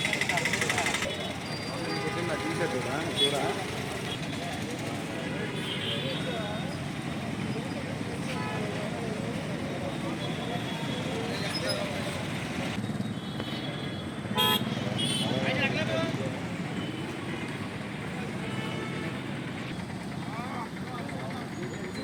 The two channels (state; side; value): identical; both; correlation 1.00